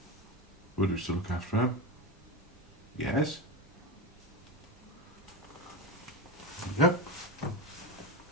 would we still look after them? Yes. Yep.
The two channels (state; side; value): normal; both; correlation 0.19